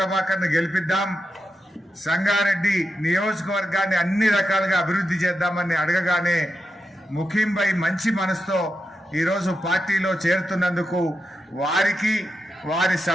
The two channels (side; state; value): both; normal; correlation 0.88